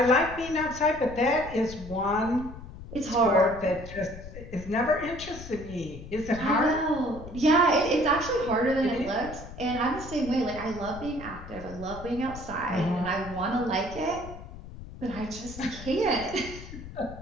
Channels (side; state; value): left; noise; rumble, 13 dB below the sound